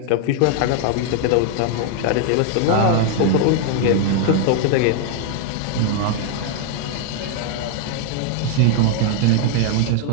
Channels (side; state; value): both; different; correlation 0.00